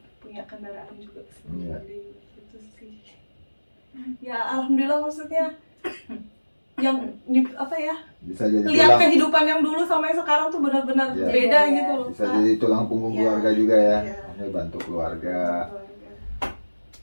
punya kendaraan juga sendiri. Itu sih. Ya alhamdulillah, maksudnya yang apa ya? bisa jadi Lihat tulang, kehidupan yang dulu sama yang sekarang tuh benar-benar Ya. beda Ya. gitu loh. bisa Kak. jadi tulang punggung Ya. keluarga juga ya, Ya. maksudnya bantu keluarga. Keluarga.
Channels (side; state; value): both; inverted; correlation -1.00